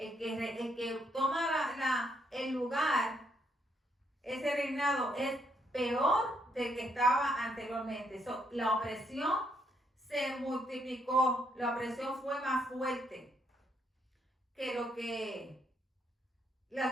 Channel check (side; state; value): both; normal; correlation 0.74